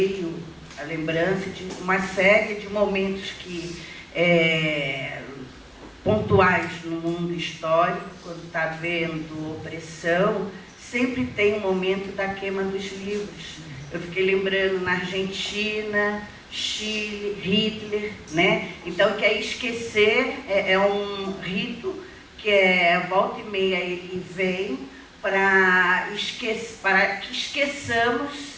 a lembrança de uma série de momentos que pontuais no mundo histórico, quando está havendo opressão, sempre tem um momento da queima dos livros. Eu fiquei lembrando na Argentina, Chile, Hitler, né? Então, que é esquecer, é um rito que volta e meia ele vem para que esqueçamos,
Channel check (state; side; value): identical; both; correlation 1.00